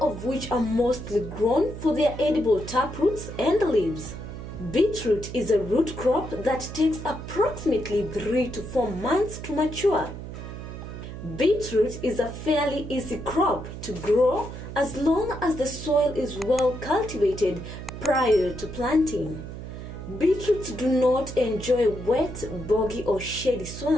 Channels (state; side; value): noise; right; hum, 10 dB below the sound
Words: of which are mostly grown for their edible taproots and leaves. Beetroot is a root crop that takes approximately 3 to 4 months to mature. Beetroot is a fairly easy crop to grow as long as the soil is well cultivated prior to planting. Beetroots do not enjoy wet, boggy or shady